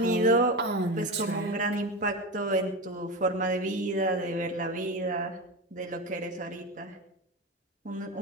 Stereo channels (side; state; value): both; normal; correlation 0.21